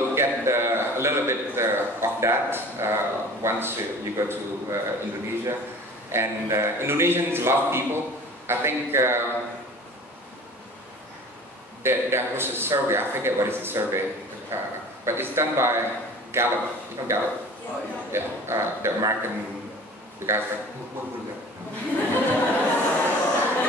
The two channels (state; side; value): normal; both; correlation 0.42